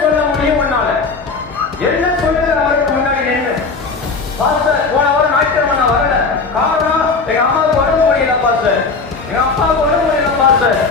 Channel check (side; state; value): right; quieter; 4.3 dB